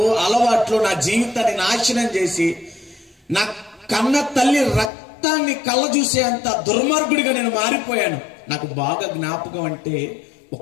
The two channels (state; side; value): drops out; right; at 4.9 s